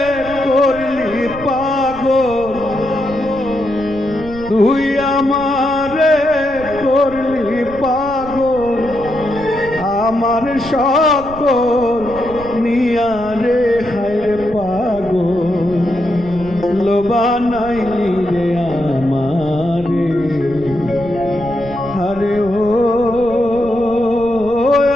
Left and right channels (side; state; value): right; noise; rumble, 15 dB below the sound